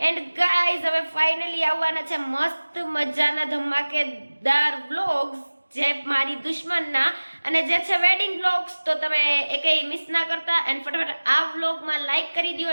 એન્ડ ગાઈઝ હવે ફાઇનલી આવવાના છે મસ્ત મજાના ધમાકેદાર વ્લોગ્સ જે મારી દુશ્મનના અને જે છે વેડિંગ વ્લોગ્સ. તો તમે એકેય મિસ ના કરતા. એન્ડ ફટાફટ આ વ્લોગમાં લાઈક કરી દો,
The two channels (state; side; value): inverted; both; correlation -1.00